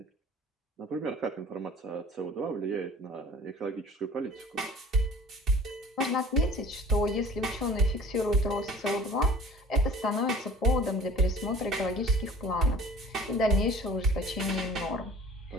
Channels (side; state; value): both; normal; correlation 0.47